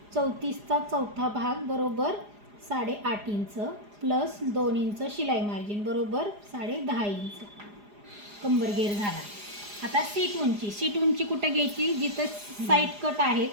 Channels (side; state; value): left; late; 4.9 ms